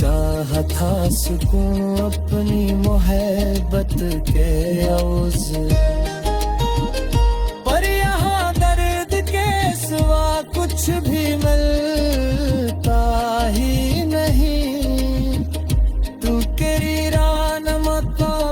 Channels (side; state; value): both; identical; correlation 1.00